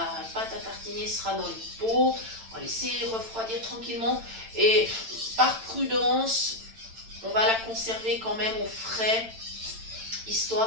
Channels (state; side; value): late; left; 8.9 ms